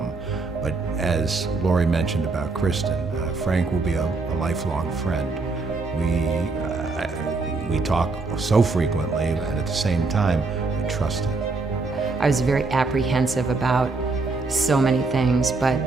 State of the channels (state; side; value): quieter; left; 3.8 dB